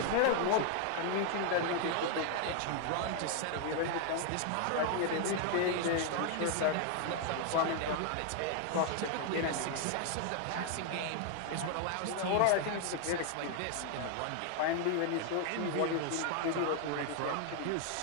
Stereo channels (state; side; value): different; both; correlation 0.00